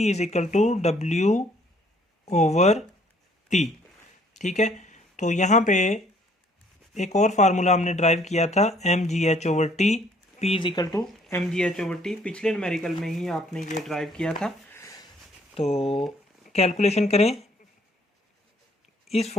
is equal to W over T। ठीक है, तो यहाँ पे एक और फार्मूला हमने ड्राइव किया था mgh over T, P is equal to mgh over T, पिछले न्यूमेरिकल में ही आपने ये ड्राइव किया था। तो कैलकुलेशन करें, इस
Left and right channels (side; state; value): both; normal; correlation 0.62